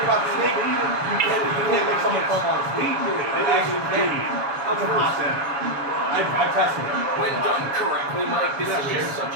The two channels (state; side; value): late; left; 6.9 ms